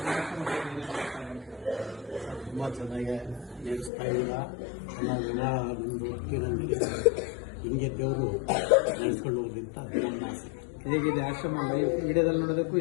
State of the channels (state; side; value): drops out; right; at 3.9 s